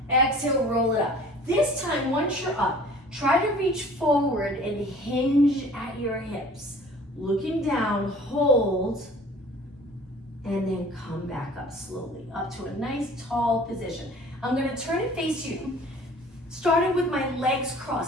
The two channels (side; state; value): both; normal; correlation 0.48